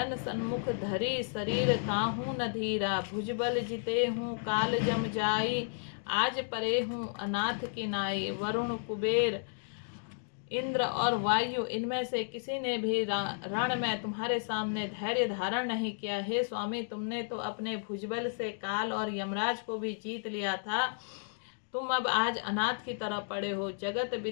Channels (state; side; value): silent; right; digital silence